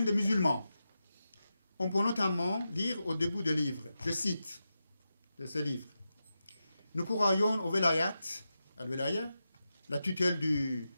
des musulmans. On peut notamment lire au début du livre, je cite de ce livre: nous croyons au velayat, al-velaya, la tutelle du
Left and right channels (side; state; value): both; inverted; correlation -0.90